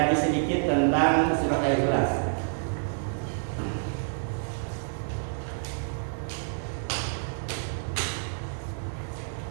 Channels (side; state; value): left; silent; digital silence